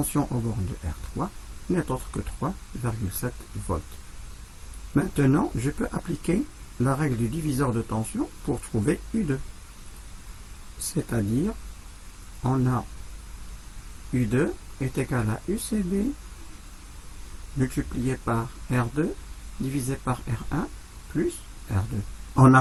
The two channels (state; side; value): identical; both; correlation 1.00